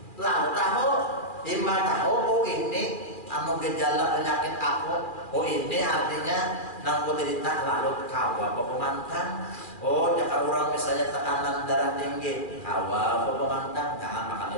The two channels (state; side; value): late; right; 2.4 ms